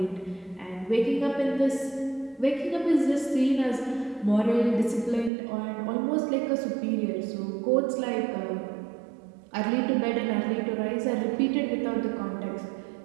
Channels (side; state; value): left; drops out; at 5.3 s